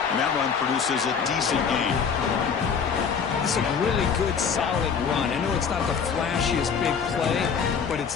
And that run produces a decent gain. This is a really good, solid run. I know it's not the flashiest big play, but it's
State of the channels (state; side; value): quieter; right; 6.5 dB